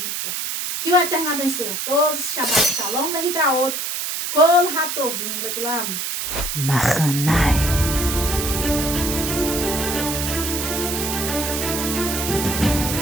forma. Que o Eterno abençoe a todos. Shabbat Shalom, Lehitraot, Kol Hatovim, Lekulam. Machanai.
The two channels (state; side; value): noise; right; hiss, 3 dB below the sound